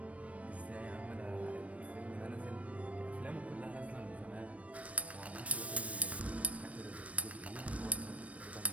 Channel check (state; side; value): late; left; 0.065 ms